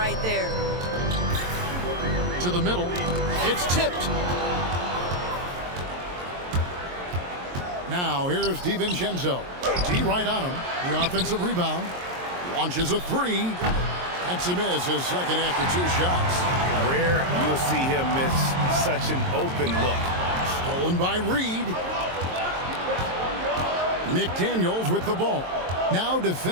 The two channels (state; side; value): late; left; 22 ms